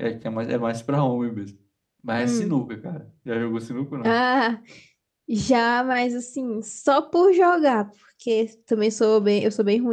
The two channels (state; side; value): identical; both; correlation 1.00